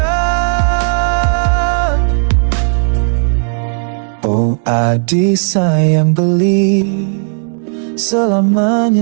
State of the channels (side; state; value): left; silent; digital silence